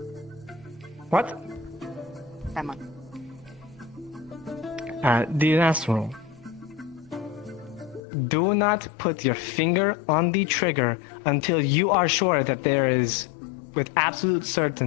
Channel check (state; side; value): drops out; right; at 8.0 s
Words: What? Emma. The last rule. Do not put your finger on the trigger until you are sure that there is, with absolute